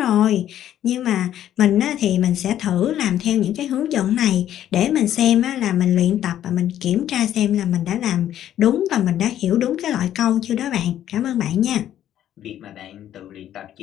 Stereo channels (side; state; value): right; quieter; 11.4 dB